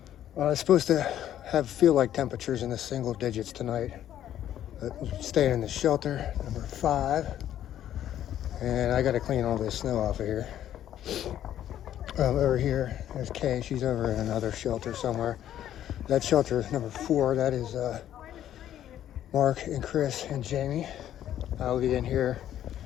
It's supposed to feel like temperatures in the single digits tonight. Staying in the shelter, number 5. And I got to clean all this snow off of here. Over here, there's Kay. She's over in another shelter somewhere. That shelter is number 4. That is Mark and Chris and Jamie. I'll be in here.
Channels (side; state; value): right; quieter; 11.3 dB